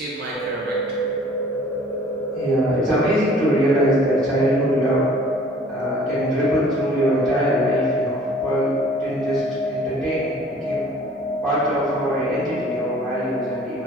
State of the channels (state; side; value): normal; both; correlation 0.52